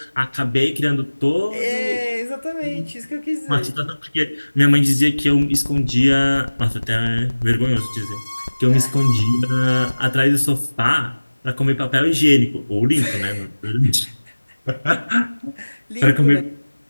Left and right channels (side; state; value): both; inverted; correlation -1.00